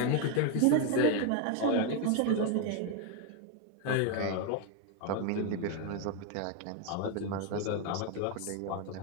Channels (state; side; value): different; both; correlation 0.01